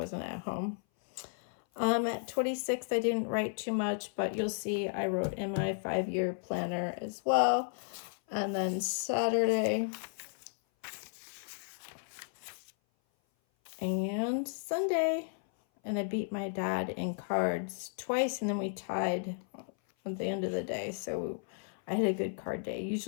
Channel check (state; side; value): silent; right; 55 dB below the other